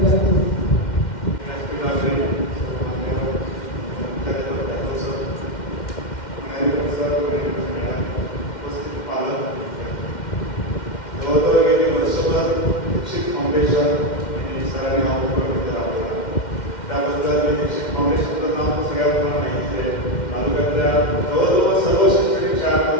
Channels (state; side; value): late; right; 2.1 ms